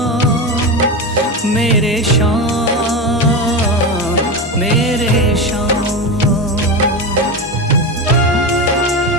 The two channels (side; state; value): both; normal; correlation 0.19